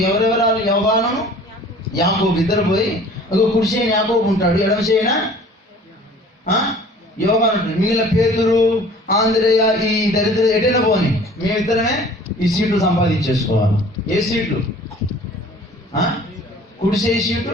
ఎవరెవరాలు యోహాను యాకోబు ఇద్దరు పోయి కుడి చేయని యాకోబు ఉంటాడు, ఎడమ చేయనా యోహాను ఉంటాడు. మిగిలిన పేతురు ఆంధ్రేయ ఈ దరిద్ర ఎటైనా పోని మేమిద్దరమే ఈ సీట్లు సంపాదించేసుకోవాలి. ఏ సీట్లు? కుడి చేయి సీటు,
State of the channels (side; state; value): both; normal; correlation 0.49